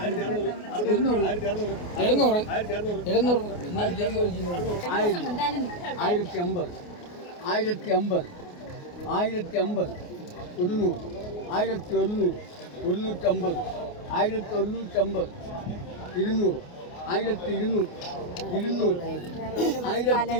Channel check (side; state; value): right; late; 28 ms